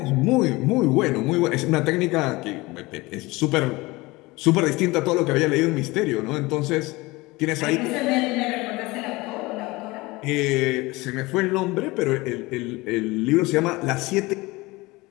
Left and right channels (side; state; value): right; quieter; 22.1 dB